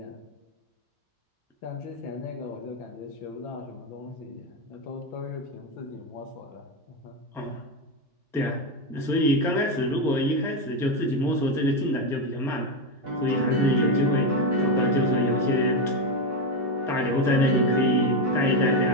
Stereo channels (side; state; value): both; normal; correlation 0.09